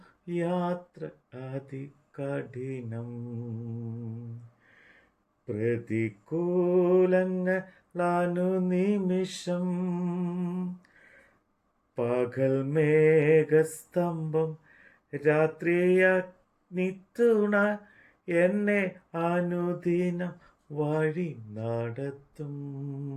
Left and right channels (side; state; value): both; identical; correlation 1.00